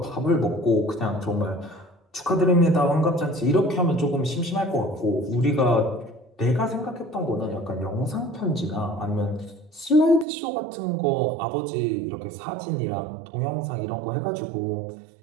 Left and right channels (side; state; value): left; drops out; at 10.2 s